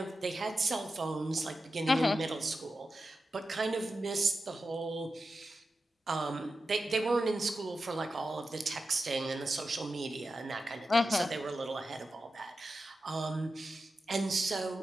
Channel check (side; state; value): both; normal; correlation 0.91